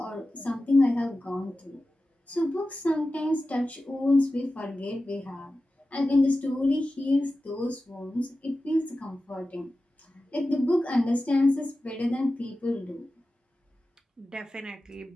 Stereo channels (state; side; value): normal; both; correlation 0.94